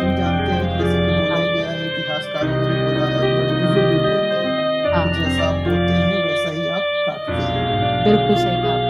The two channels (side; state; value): both; identical; correlation 1.00